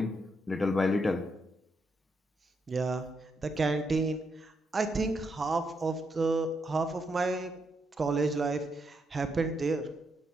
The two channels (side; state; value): both; normal; correlation 0.80